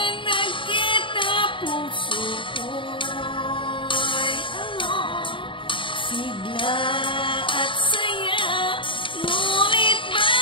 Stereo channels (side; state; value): right; late; 0.25 ms